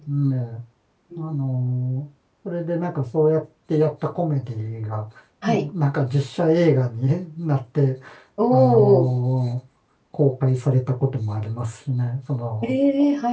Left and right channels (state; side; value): identical; both; correlation 1.00